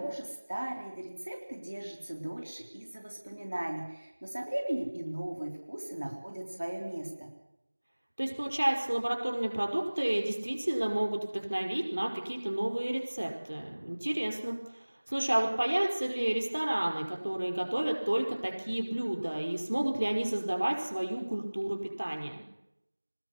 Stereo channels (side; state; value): both; inverted; correlation -1.00